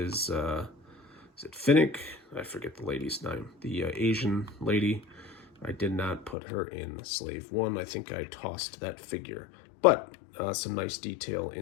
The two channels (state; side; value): drops out; right; at 6.4 s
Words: it Finnick? I forget the lady's name. The Asian lady. I did not put her in Slave One. I think I tossed that figure. But some nice detail